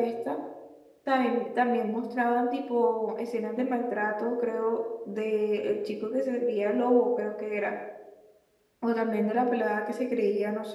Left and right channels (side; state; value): both; identical; correlation 1.00